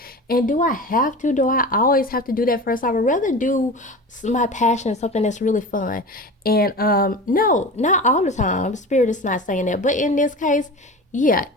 and do I have to? Do I always have to do that first? I would rather do my passion, something that's really fun. And no, not all the time. Spirit is not saying that, but in this case, yeah.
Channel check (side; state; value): both; normal; correlation 0.32